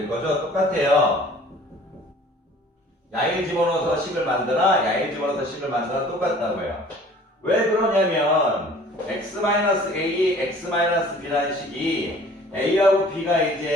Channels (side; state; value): both; normal; correlation 0.50